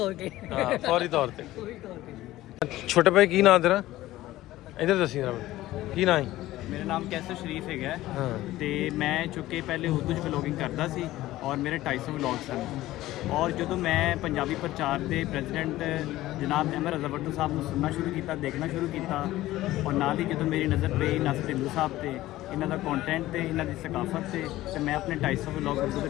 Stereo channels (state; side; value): quieter; right; 16.0 dB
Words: ਹਾਂ ਫੌਰੀ ਤੌਰ ਤੇ। ਛੋਟੇ ਭਾਈ ਕੀ ਨਾਂ ਤੇਰਾ? ਇੱਧਰ ਦੱਸੀ ਜਰਾ ਕੀ ਨਾਂ ਹੈ? ਮੇਰਾ ਨਾਮ ਕੈਸਰ ਸ਼ਰੀਫ ਹੈਗਾ ਹਾਂ ਤੇ ਮੈਂ ਚੁੱਕੇ ਪਹਿਲੇ ਉਰਦੂ 'ਚ ਵਲੋਗਿੰਗ ਕਰਦਾ ਸੀ ਔਰ ਮੇਰੇ 250 ਵਲੋਗ ਸਨ। ਔਰ ਜਦੋਂ ਮੈਂ ਪੰਜਾਬੀ ਪ੍ਰਚਾਰ ਦੇ ਪ੍ਰੈਜ਼ੀਡੈਂਟ ਜਨਾਬ ਅਹਿਮਦ ਰਜ਼ਾ ਭੱਟੂ ਸਾਹਿਬ ਨੂੰ ਸੁਣਨਾ ਸ਼ੁਰੂ ਕੀਤਾ, ਦੇਖਣਾ ਸ਼ੁਰੂ ਕੀਤਾ ਔਰ ਨਾਲ ਹੀ ਜਦੋਂ ਮੇਰੀ ਨਜ਼ਰ ਪਈ ਨਾਸਰ ਢਿੱਲੋਂ ਸਾਹਿਬ ਤੇ, ਇਹਨਾਂ ਦਾ ਕੰਟੈਂਟ ਤੇ, ਇਹਨਾਂ ਦੀ ਸਕਾਫਤ ਤੇ ਮੈਂ ਆਪਣੇ 250 ਵਲੋਗ ਉਰਦੂ ਤੋਂ